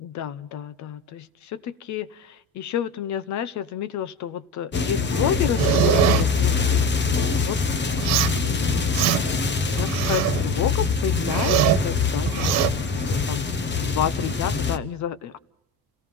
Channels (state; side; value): normal; both; correlation 0.26